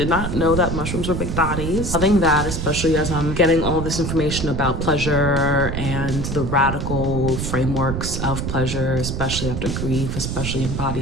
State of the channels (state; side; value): noise; right; rumble, 3 dB below the sound